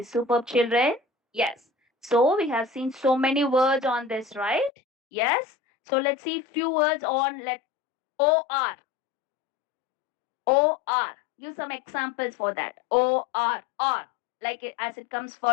superb children. Yes. So we have seen so many words on this, right? Yes. So let's see few words on let OR. OR. Use some examples for that. OR. R. Like it, as it comes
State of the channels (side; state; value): right; drops out; at 4.7 s